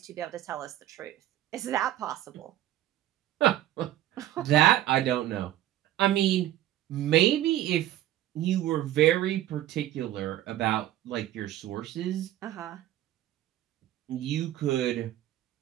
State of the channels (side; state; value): left; quieter; 13.4 dB